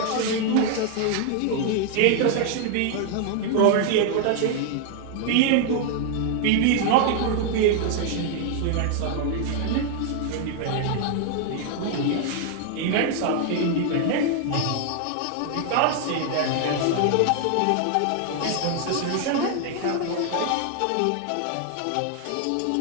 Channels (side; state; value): both; different; correlation 0.00